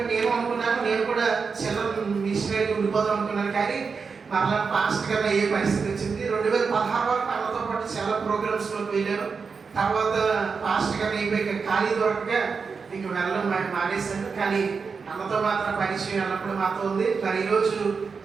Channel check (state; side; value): quieter; left; 5.2 dB